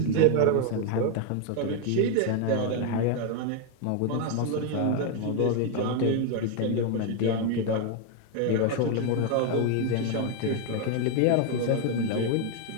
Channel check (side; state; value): both; different; correlation 0.01